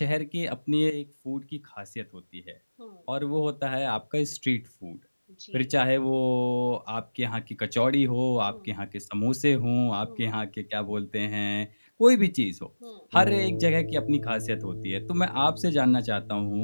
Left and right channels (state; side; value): inverted; both; correlation -1.00